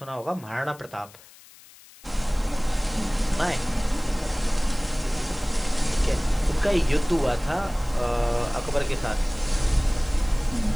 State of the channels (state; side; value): noise; left; hiss, 23 dB below the sound